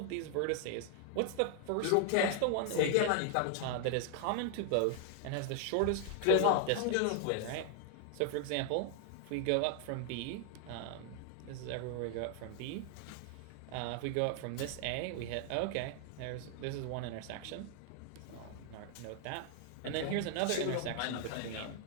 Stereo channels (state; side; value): different; both; correlation 0.00